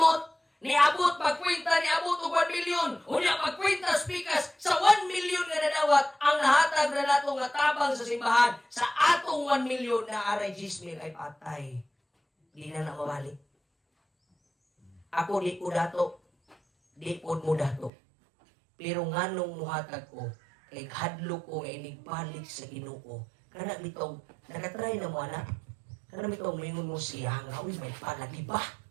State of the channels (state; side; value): drops out; left; at 17.9 s